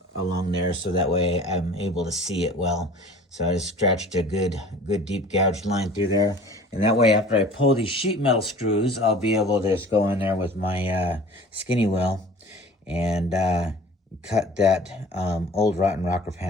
there, so that way I'm able to see it well. So I just scratched a good deep gouged line through there, and that way after I pull these sheet metal screws, I'll be able to just go in there with my skinny wheel and cut that old rotten rocker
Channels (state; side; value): normal; both; correlation 0.45